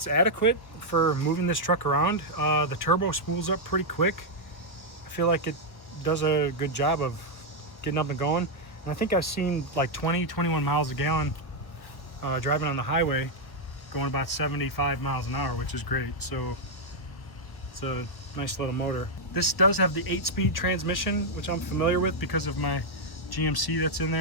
adequate for moving this truck around. The turbo spools up pretty quick. I feel like it does a good job of getting up and going. And I think I've seen like 21 miles a gallon driving on the highway, going about 75 miles an hour, which is great. So it's a nice little motor. This does have the 8-speed transmission, which I'm familiar with because of my GMC that's in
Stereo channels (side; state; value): right; late; 1.1 ms